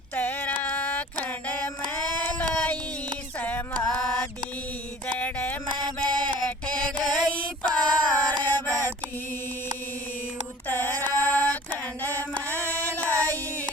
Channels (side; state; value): both; normal; correlation 0.45